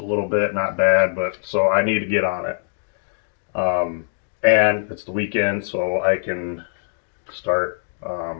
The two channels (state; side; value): silent; right; digital silence